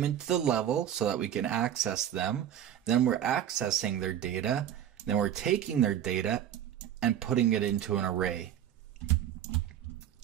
into the level so that we can access them. Then we're accessing their data. Then we're taking their data and putting it into an array.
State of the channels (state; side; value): quieter; left; 10.4 dB